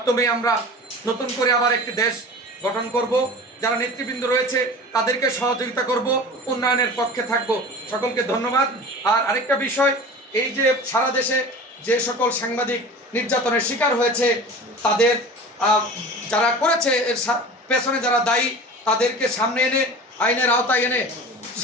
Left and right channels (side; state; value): both; normal; correlation 0.37